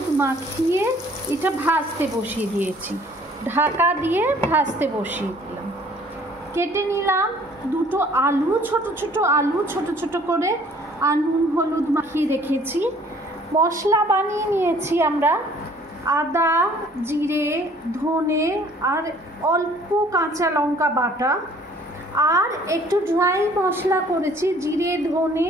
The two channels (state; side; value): normal; both; correlation 0.56